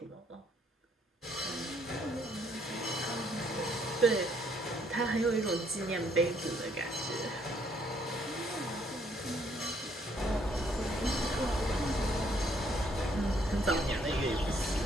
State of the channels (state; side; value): normal; both; correlation 0.67